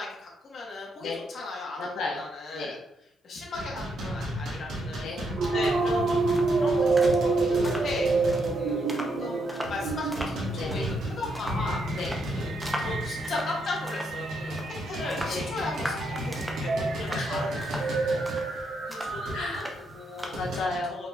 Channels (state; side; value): normal; both; correlation 0.78